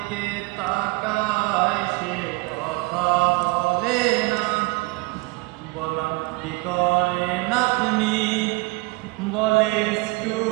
তাকায় সে কথা বলে না। বললাম কি করেন আপনি, বলে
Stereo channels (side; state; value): left; quieter; 25.1 dB